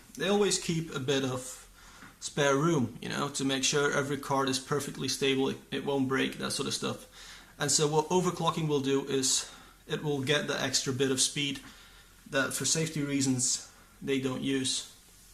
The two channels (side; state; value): both; identical; correlation 1.00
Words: they always keep a bit of spare room, to make sure every card is perfectly stable, it won't break, that sort of stuff. And so what overclocking will do is it will get the extra bit of speed that for safety reasons they don't use.